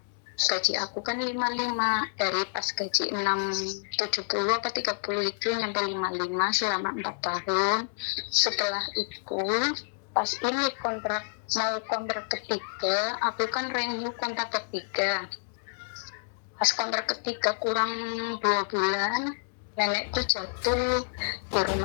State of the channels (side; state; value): right; silent; digital silence